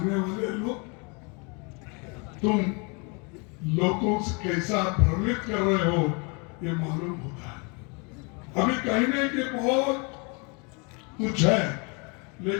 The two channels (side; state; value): right; quieter; 32.4 dB